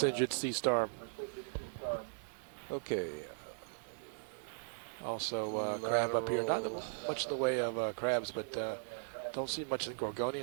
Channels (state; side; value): silent; left; digital silence